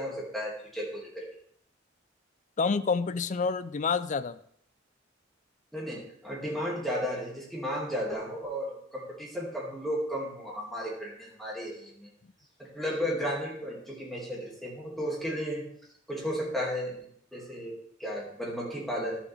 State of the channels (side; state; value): both; normal; correlation 0.39